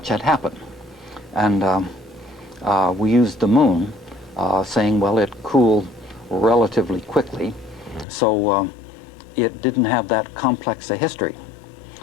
had happened. And we used the moon, saying, well, it cooled relatively quickly, so it didn't have that complex a history.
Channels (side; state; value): right; drops out; at 8.1 s